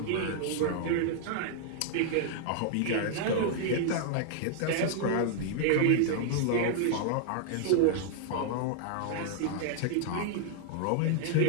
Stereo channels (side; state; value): both; different; correlation -0.01